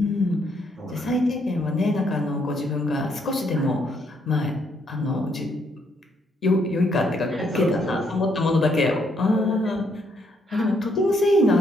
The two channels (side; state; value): both; normal; correlation 0.72